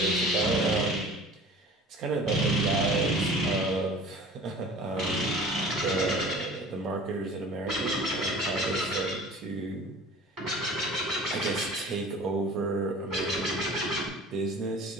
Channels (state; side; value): normal; both; correlation 0.43